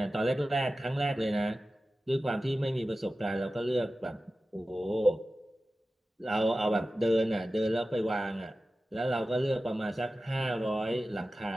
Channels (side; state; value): both; normal; correlation 0.94